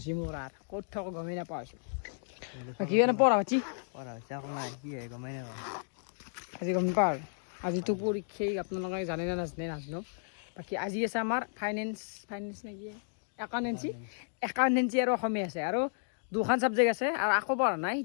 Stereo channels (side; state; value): right; silent; digital silence